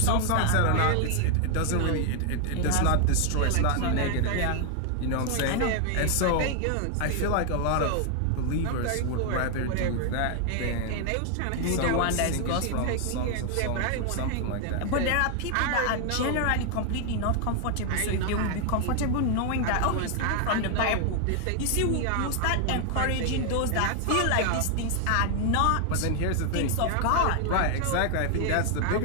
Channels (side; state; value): both; different; correlation 0.00